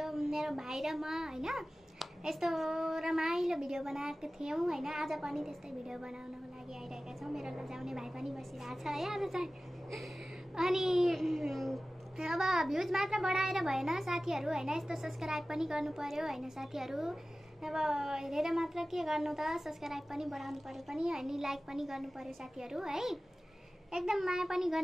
मेरो भाइ र म हैन यस्तो रमाइलो भिडियो बनाएको थियौं हैन। आज पनि त्यस्तै भिडियो बनाउनको लागि आइरहेका छौं। मेरो लजाउने भाइ पनि बसिरहेछ है आज चाहिँ। अनि अब भ्युज मात्र बढाएर भएन साथीहरु हैन, यस्तो सब्स्क्राइब पनि गर्नु पर्यो हैन साथीहरु। अब हेरेर मात्र के गर्नु त, सब्स्क्राइब पनि बढाउनु पर्यो पनि अनि लाइक पनि गर्नु पर्यो साथीहरु है। एकदम माया पनि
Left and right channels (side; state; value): both; normal; correlation 0.97